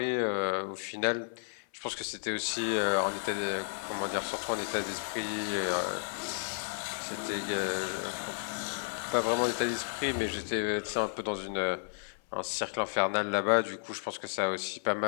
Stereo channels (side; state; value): right; silent; 56 dB below the other